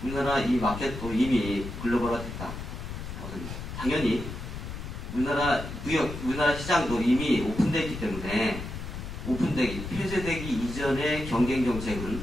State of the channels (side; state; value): left; noise; rumble, 8 dB below the sound